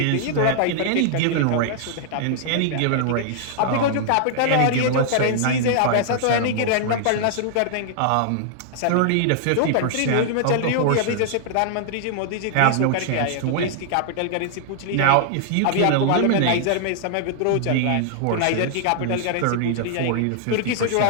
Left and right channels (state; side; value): different; both; correlation -0.01